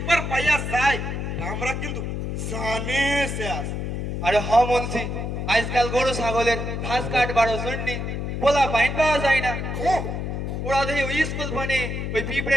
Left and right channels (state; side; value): noise; left; hum, 3 dB below the sound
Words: পাইয়া যায়, আমরা কিন্তু জানে শেষ। আরে হ মুন্সি, আজকাল গরু ছাগলের ঘাস কাটবারও জন্য পোলা পাইন পাওয়া যায় না। ওরা দেখি ওই স্কুল মানে ওই